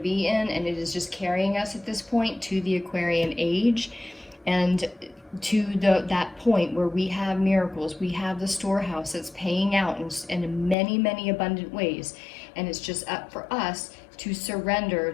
in, and it is just carrying us at this point to the Aquarian age, and to that point where we have miracles, we have the storehouse that's paying out in many, many abundant ways, and it's just up for us to surrender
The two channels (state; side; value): drops out; right; at 10.8 s